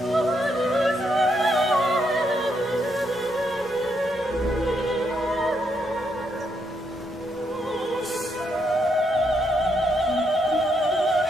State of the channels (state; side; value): normal; both; correlation 0.77